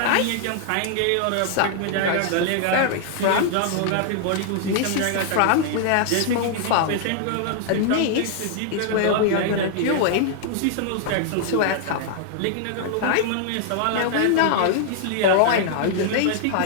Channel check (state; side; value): different; both; correlation -0.01